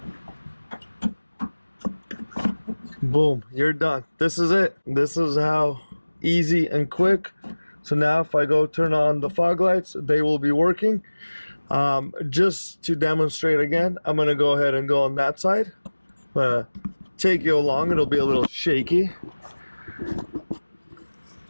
boom, you're done. This is it. This is how easy and quick. So now if I go turn on the fog lights, they will be working. Just to demonstrate again, I'm gonna go ahead and go on that side. Take you along. It'll be a little shaky.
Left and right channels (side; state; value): both; inverted; correlation -1.00